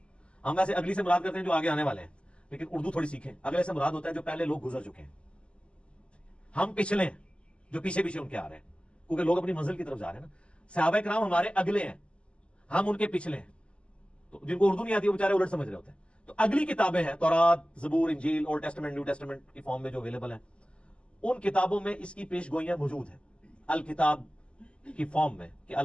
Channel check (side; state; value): right; late; 0.054 ms